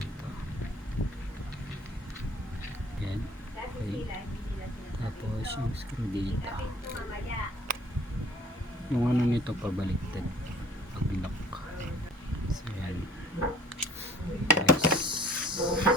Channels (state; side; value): normal; both; correlation 0.52